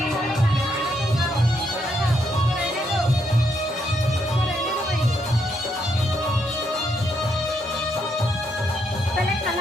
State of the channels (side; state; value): both; normal; correlation 0.76